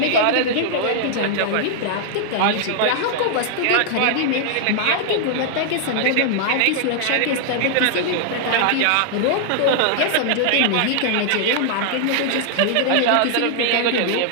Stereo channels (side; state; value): both; different; correlation -0.01